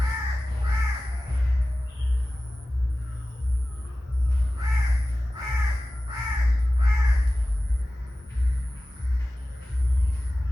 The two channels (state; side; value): normal; both; correlation 0.96